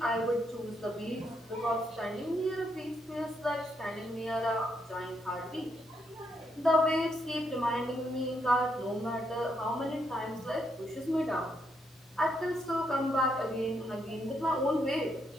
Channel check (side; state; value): both; normal; correlation 0.77